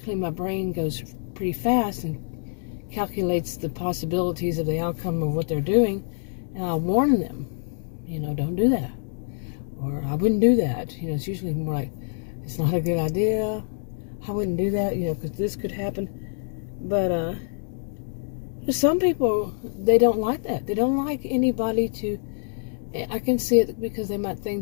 my brain goes pretty fast and calculates the possibilities of the outcome of what they're doing, and I'll warn them, don't do that. Or I wouldn't do that. It's usually more like, it's not a good idea. I wouldn't do that, because this could happen. But some people, they don't like that. They don't like anybody to, I can see it because they might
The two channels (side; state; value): right; silent; digital silence